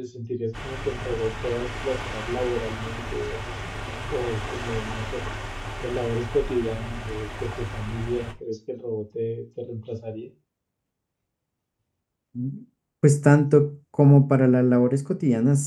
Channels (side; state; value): both; identical; correlation 1.00